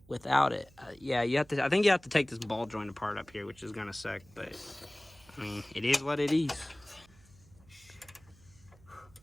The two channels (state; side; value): noise; right; hum, 26 dB below the sound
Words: without it. Yeah, you have to. I think you have to take this ball joint apart up here, which is gonna suck. But I mean, it is what it is.